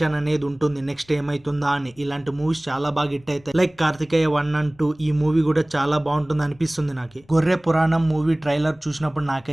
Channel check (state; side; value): noise; left; rumble, 30 dB below the sound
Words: అనేది ఉంటుంది. నెక్స్ట్ ఏమైతుందా అని. ఇలాంటి మూవీస్ చాలా బాగా హిట్ అవుతాయి. Like Karthikeya 1 and 2. ఈ మూవీ కూడా చాలా బాగుంటుంది అనిపిస్తుంది నాకు. గొర్రె పురాణం మూవీ ట్రైలర్ చూసినప్పుడు